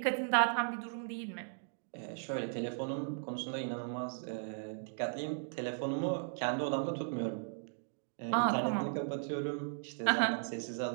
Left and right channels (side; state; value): left; silent; digital silence